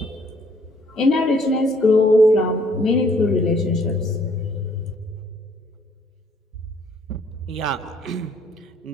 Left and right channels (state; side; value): normal; both; correlation 0.63